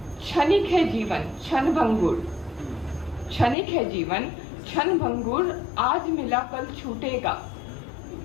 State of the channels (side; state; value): right; drops out; at 3.6 s